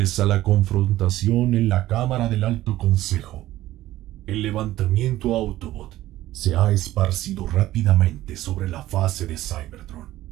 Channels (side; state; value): left; quieter; 15.1 dB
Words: a la confrontación en la Cámara del Alto Consejo, el levantamiento Autobot se ha esparcido rápidamente sobre la fase de Cybertron.